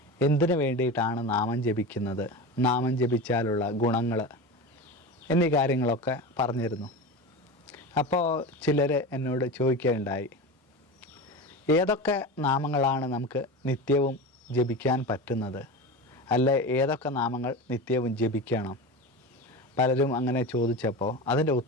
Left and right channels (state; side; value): normal; both; correlation 0.26